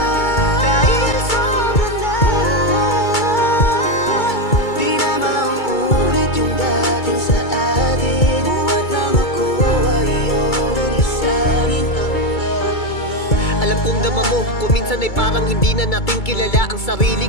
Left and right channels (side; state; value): right; late; 2.3 ms